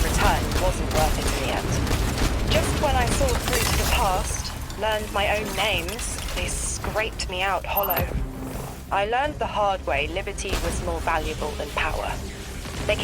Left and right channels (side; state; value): both; identical; correlation 1.00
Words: return wasn't worth it in the end. Just when I saw through to the past, learned my own names, they scraped me out hollow. I learned the hard way liberty was more valuable than power. They